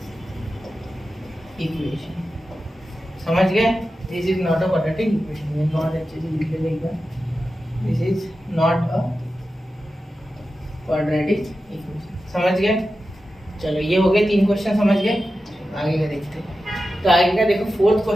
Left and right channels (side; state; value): both; normal; correlation 0.92